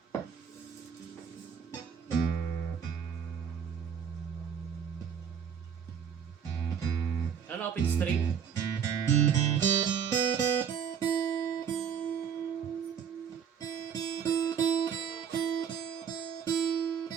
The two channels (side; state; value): left; quieter; 7.7 dB